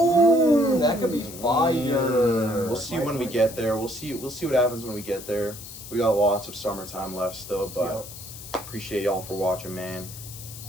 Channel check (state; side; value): noise; left; hiss, 13 dB below the sound